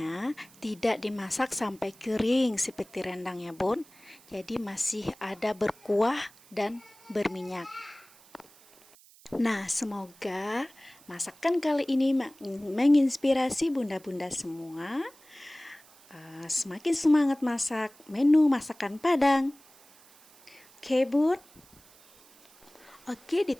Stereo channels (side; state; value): right; noise; hiss, 26 dB below the sound